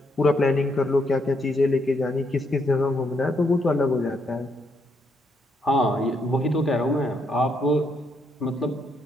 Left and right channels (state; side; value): normal; both; correlation 0.76